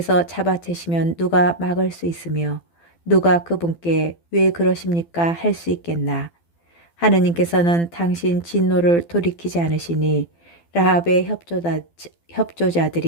잡아채시면 누가 막을 수 있으며 누가 그분께 왜 그러십니까 할 수 있겠나. 하느님께서는 당신 진노를 돌이키지 않으시니 라합의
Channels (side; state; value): right; late; 12 ms